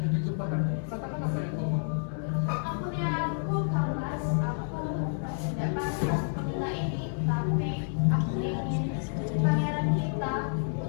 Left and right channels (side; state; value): right; silent; 58 dB below the other